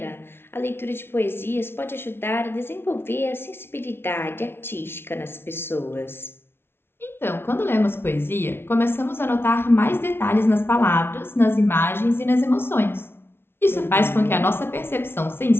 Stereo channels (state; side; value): late; right; 0.11 ms